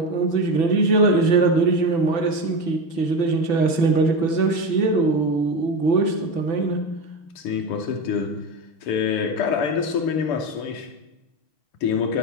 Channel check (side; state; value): right; late; 6.0 ms